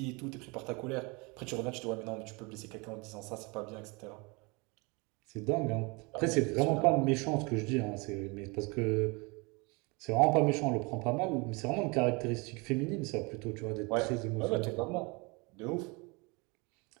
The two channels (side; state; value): left; quieter; 28.2 dB